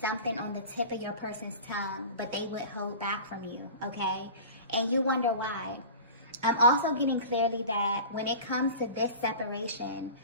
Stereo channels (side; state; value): both; inverted; correlation -0.36